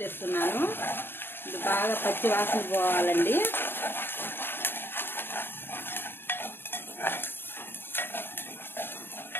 వేస్తున్నాను. ఇది బాగా పచ్చి వాసన పోవాలండి.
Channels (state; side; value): late; right; 0.10 ms